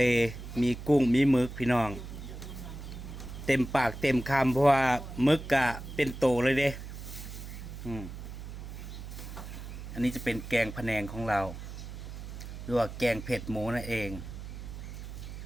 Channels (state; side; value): noise; right; hum, 10 dB below the sound